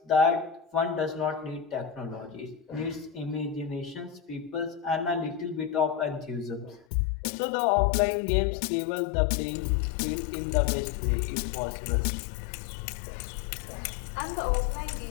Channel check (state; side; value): drops out; right; at 6.9 s